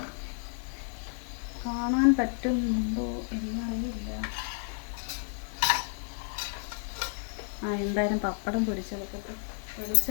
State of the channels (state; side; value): silent; right; 57 dB below the other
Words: കാണാൻ പറ്റുന്നുണ്ടോ എന്നറിയില്ല. എന്തായാലും പപ്പടം പൊരിച്ചെടുക്കട്ടെ.